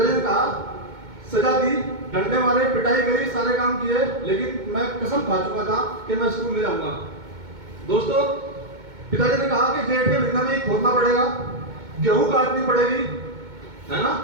ने कहा, सजा दी, डंडे मारे, पिटाई करी, सारे काम किए, लेकिन मैं कसम खा चुका था कि मैं स्कूल नहीं जाऊंगा। दोस्तों पिताजी ने कहा कि जेठ के महीने में खोदना पड़ेगा, गेहूं काटनी पड़ेगी, है ना,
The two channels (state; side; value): late; left; 2.2 ms